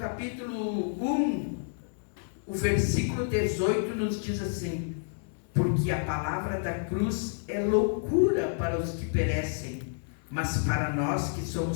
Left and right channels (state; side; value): silent; right; digital silence